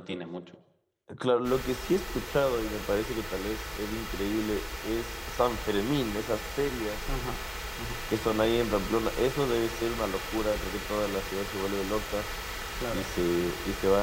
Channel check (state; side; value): identical; both; correlation 1.00